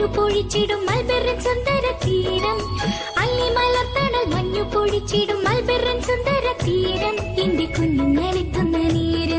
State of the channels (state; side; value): identical; both; correlation 1.00